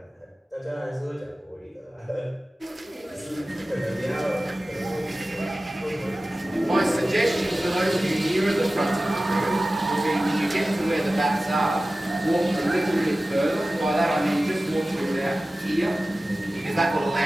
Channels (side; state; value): both; normal; correlation 0.96